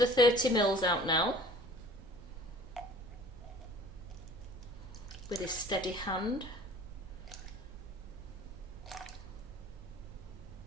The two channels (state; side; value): noise; right; hum, 18 dB below the sound